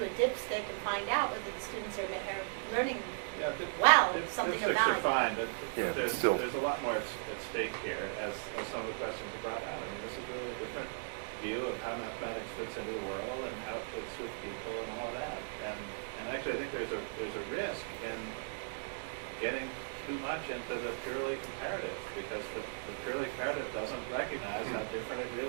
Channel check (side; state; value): left; silent; digital silence